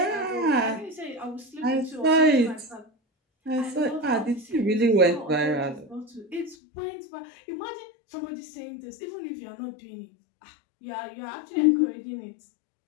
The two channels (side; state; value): right; drops out; at 6.6 s